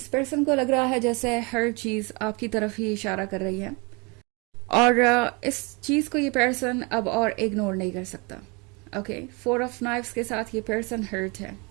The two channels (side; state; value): left; quieter; 29.6 dB